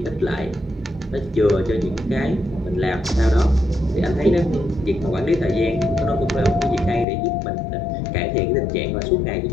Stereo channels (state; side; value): drops out; right; at 7.1 s